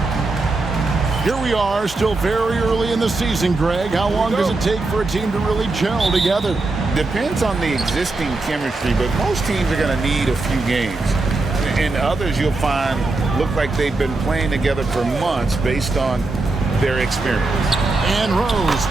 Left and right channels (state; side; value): quieter; left; 3.3 dB